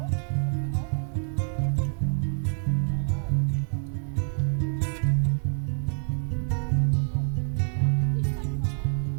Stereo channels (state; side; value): silent; left; digital silence